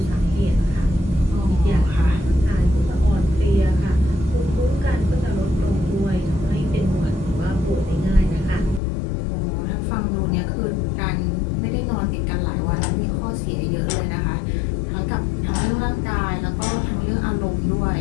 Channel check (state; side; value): drops out; right; at 8.8 s